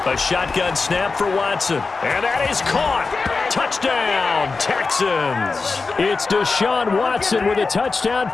A shotgun snap for Watson. And that is caught. Touchdown, Texans. It's Deshaun Watson with a touchdown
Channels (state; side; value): quieter; right; 4.2 dB